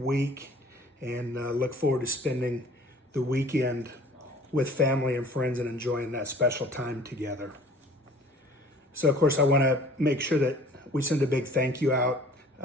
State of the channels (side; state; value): both; normal; correlation 0.50